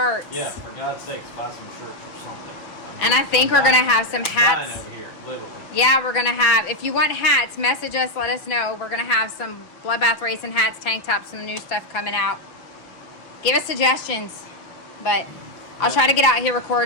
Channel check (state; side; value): late; right; 6.0 ms